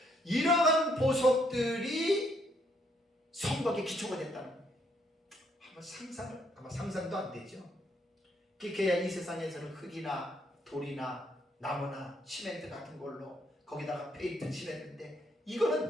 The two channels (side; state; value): both; normal; correlation 0.71